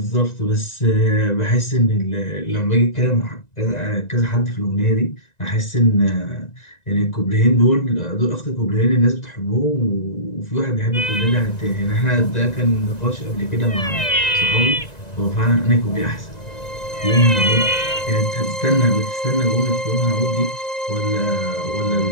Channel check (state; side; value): late; right; 1.9 ms